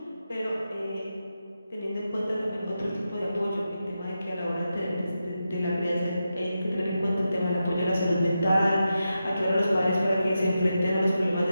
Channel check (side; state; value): both; inverted; correlation -0.89